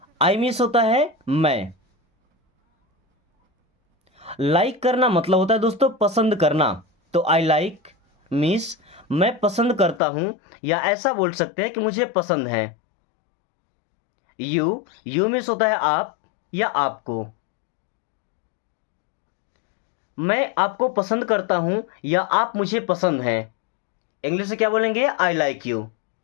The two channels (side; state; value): right; drops out; at 10.0 s